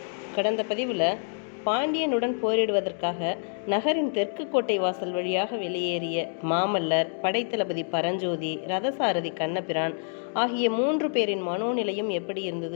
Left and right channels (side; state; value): right; silent; digital silence